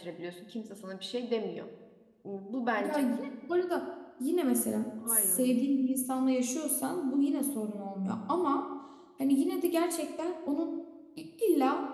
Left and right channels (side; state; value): both; identical; correlation 1.00